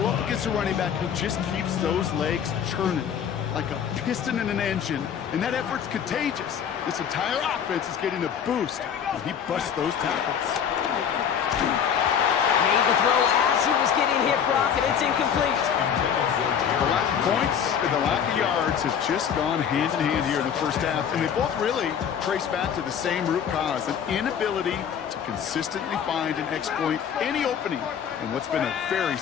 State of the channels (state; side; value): quieter; right; 8.1 dB